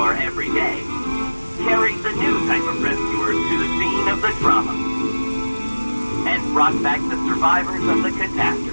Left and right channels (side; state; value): both; inverted; correlation -1.00